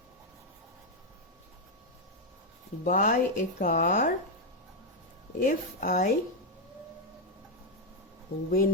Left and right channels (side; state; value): both; normal; correlation 0.01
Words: buy a car if I